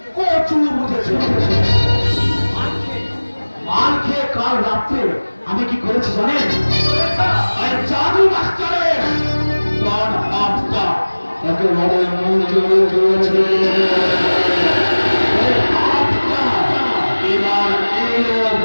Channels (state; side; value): inverted; both; correlation -1.00